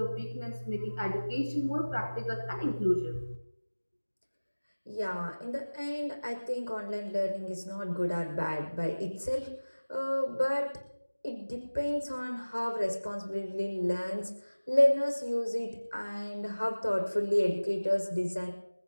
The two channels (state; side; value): inverted; both; correlation -1.00